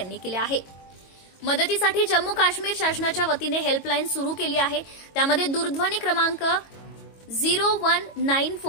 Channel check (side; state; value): right; late; 22 ms